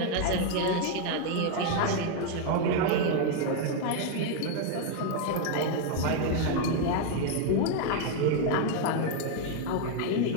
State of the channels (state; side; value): different; both; correlation 0.00